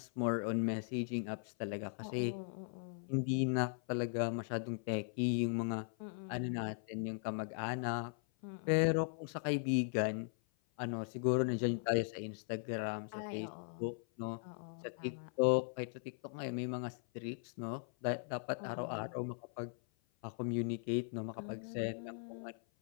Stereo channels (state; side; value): silent; right; 52 dB below the other